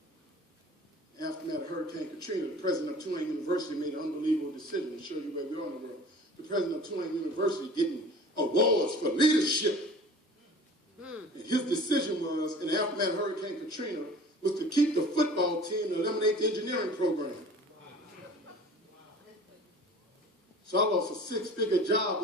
After that Hurricane Katrina, the president of Tulane University made an unbelievable decision to show you where we are in the world. The president of Tulane University getting awards for leadership. And his decision was, in the aftermath of Hurricane Katrina, was to keep the football team and eliminate the engineering program. So I lost a six-figure job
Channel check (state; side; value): normal; both; correlation 0.43